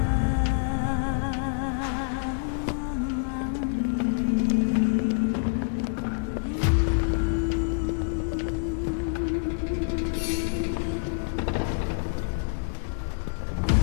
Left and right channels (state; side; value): silent; right; digital silence